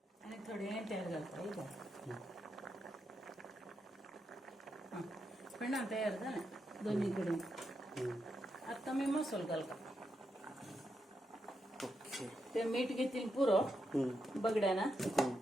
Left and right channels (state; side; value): normal; both; correlation 0.84